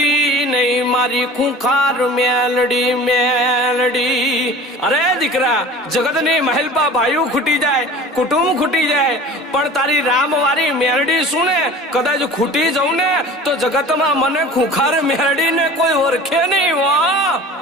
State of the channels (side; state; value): both; normal; correlation 0.40